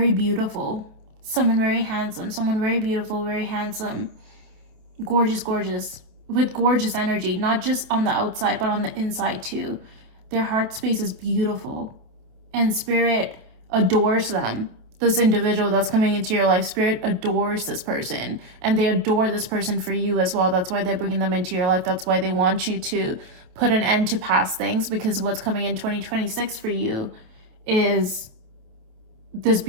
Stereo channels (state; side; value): late; left; 28 ms